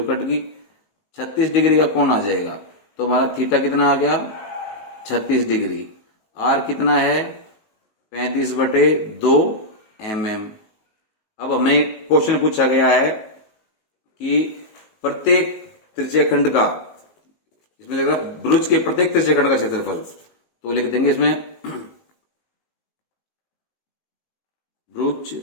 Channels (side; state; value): right; late; 19 ms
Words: कट गई, 36 डिग्री का कोण आ जाएगा। तो हमारा थीटा कितना आ गया, 36 डिग्री। आर कितना है, 35/2 mm। अब हमें क्वेश्चन पूछा गया है कि प्रत्येक त्रिज्यखंड का, इसमें लिखा ब्रूच के प्रत्येक त्रिज्यखंड का क्षेत्रफल, तो लिख देंगे इसमें ब्रूच